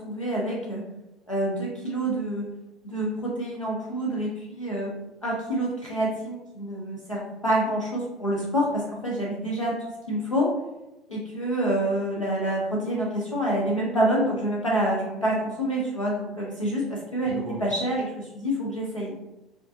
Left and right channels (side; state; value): both; normal; correlation 0.33